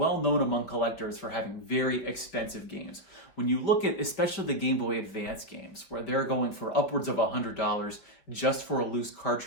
known among collectors for having very expensive games. When you look at especially the Game Boy Advance games, where they're going for upwards of $100 just for a loose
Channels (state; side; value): late; right; 5.5 ms